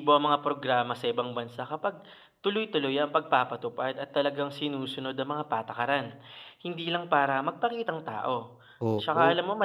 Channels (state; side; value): identical; both; correlation 1.00